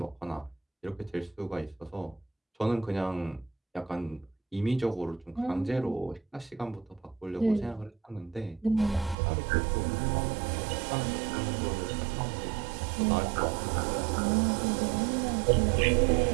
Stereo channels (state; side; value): drops out; left; at 9.2 s